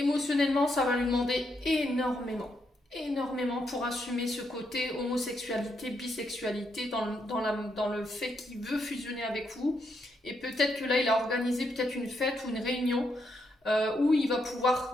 ça va lui demander énormément pour assumer ce côté homosexualité, bisexualité, dans le fait qu'il veut fusionner avec vous Et peut-être que là, il a organisé peut-être une fête ou une réunion où il va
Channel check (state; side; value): normal; both; correlation 0.79